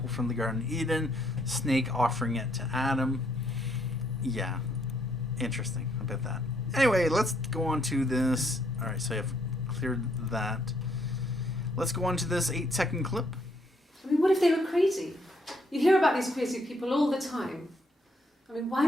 from the Garden of Eden, snake offering it to Adam. Yeah. Interesting about that. Anyway, let's go on to this. Alright, so I've cleared that. Let's go on to this 8-second clip. I mean, what if they were crazy? You hear about these crazy people all the time. I mean, why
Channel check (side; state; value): both; normal; correlation 0.71